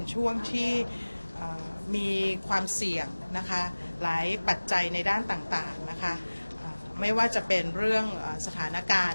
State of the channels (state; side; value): inverted; both; correlation -1.00